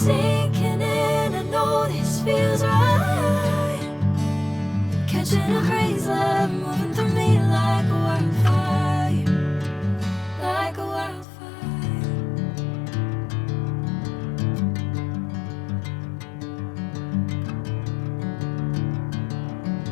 in, I know this feels right. Catching a crazy love, moving through me like a wildfire, like a wildfire.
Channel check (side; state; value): right; drops out; at 11.2 s